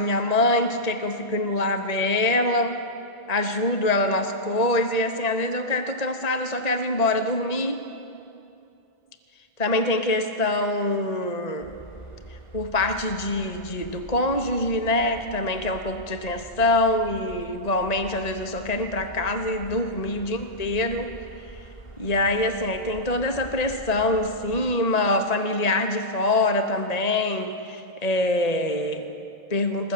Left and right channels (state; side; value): late; right; 1.8 ms